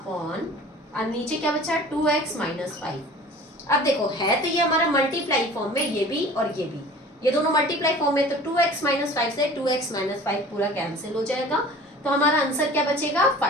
और नीचे क्या बचा 2x माइनस 5। अब देखो है तो ये हमारा मल्टीप्लाई फॉर्म में, ये भी और ये दोनों मल्टीप्लाई फॉर्म में, तो 2x माइनस 5 से 2x माइनस 5 पूरा कैंसिल हो जाएगा तो हमारा आंसर क्या बचेगा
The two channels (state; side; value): normal; both; correlation 0.43